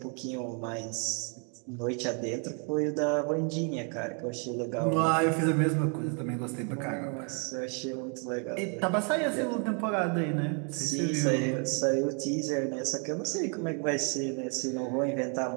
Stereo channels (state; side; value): quieter; left; 39.8 dB